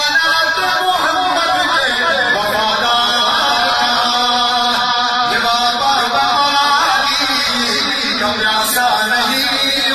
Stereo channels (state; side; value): identical; both; correlation 1.00